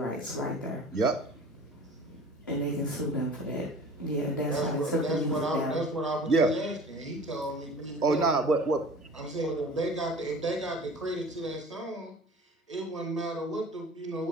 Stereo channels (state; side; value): normal; both; correlation 0.43